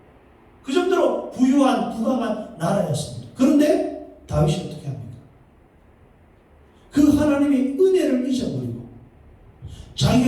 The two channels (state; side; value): identical; both; correlation 1.00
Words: 그 정도로 부유한 부강한 나라였습니다. 그런데 다윗이 어떻게 합니까? 그 하나님의 은혜를 잊어버리고